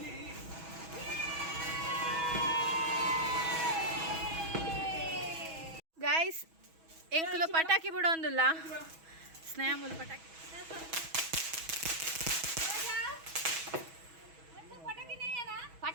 ಗೈಸ್ ಎಂಕುಲು ಪಟಾಕಿ ಬಿಡೋಂದಿಲ್ಲ ಸ್ನೇಹ ಮುಲ್ ಪಟಾಕಿ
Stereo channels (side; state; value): left; late; 6.2 ms